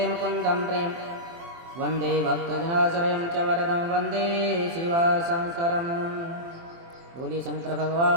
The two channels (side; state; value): left; late; 24 ms